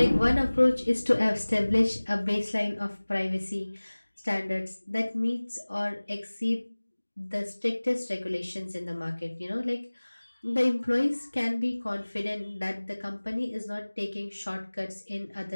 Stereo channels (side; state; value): both; inverted; correlation -1.00